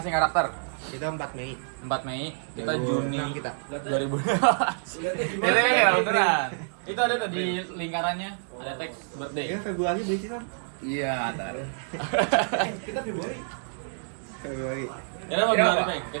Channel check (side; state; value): left; silent; digital silence